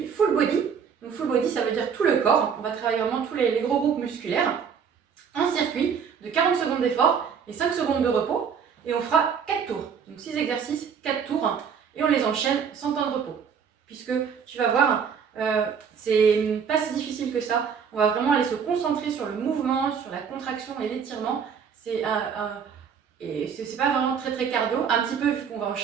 full body. Donc, full body, ça veut dire tout le corps. On va travailler vraiment tous les gros groupes musculaires. Un circuit de 40 secondes d'effort et 5 secondes de repos. Et on fera 4 tours. Donc, 6 exercices, 4 tours. Et on les enchaîne sans temps de repos. Puisque tu vas voir, c'est pas si difficile que ça. On va vraiment aller se concentrer sur le mouvement, sur la contraction et l'étirement. C'est pas vraiment très cardio, un petit peu vu qu'on va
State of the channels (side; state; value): left; quieter; 6.9 dB